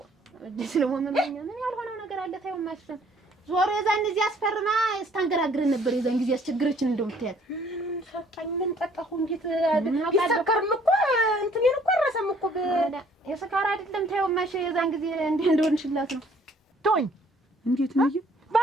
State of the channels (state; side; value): normal; both; correlation 0.60